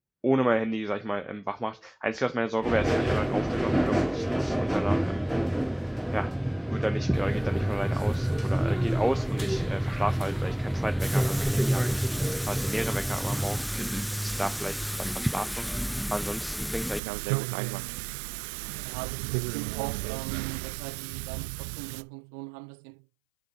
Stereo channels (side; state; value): left; drops out; at 17.0 s